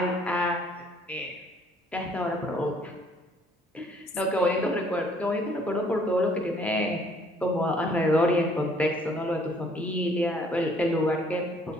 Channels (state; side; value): normal; both; correlation 0.61